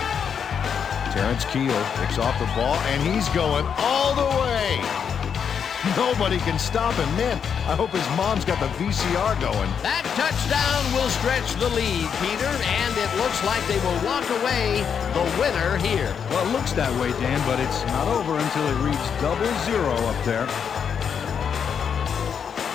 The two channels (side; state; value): right; quieter; 7.3 dB